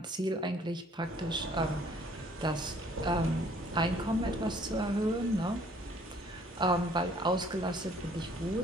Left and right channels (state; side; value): normal; both; correlation 0.59